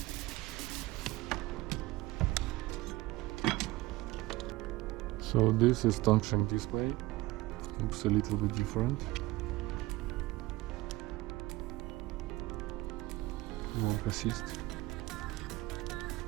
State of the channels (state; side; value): quieter; left; 19.3 dB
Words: So this is Tongsheng display. Looks a little bit different. Work assist.